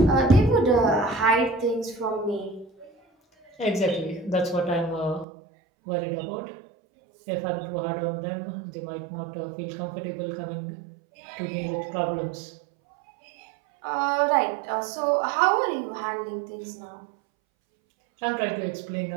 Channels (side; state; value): left; drops out; at 5.2 s